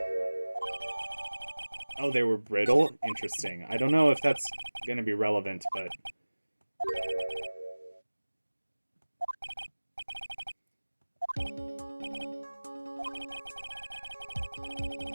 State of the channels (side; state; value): both; inverted; correlation -1.00